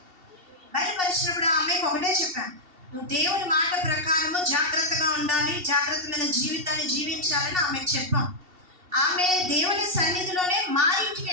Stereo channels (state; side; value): late; left; 2.7 ms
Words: బయలుపరిచినప్పుడు ఆ అమ్మాయికి ఒకటే చెప్పాను, నువ్వు దేవుని మాట ప్రకారము జాగ్రత్తగా ఉండాలి, జాగ్రత్తమైన జీవితాన్ని జీవించాలని ఆమెకు చెప్పాం. ఆమె దేవుని సన్నిధిలోనే మా ఇంటికి